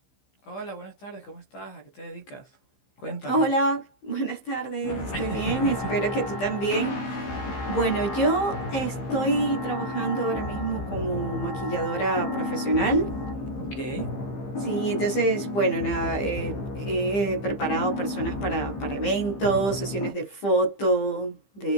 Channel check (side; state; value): right; late; 15 ms